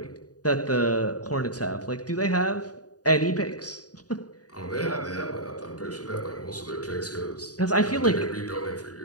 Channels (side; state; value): right; late; 0.68 ms